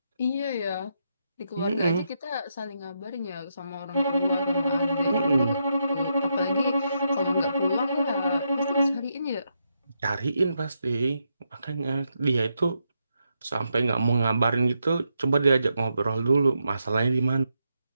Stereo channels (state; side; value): inverted; both; correlation -0.82